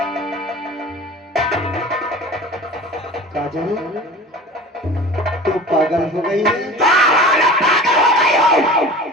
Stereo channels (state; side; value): normal; both; correlation 0.38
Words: काजल, तू पागल हो गई है?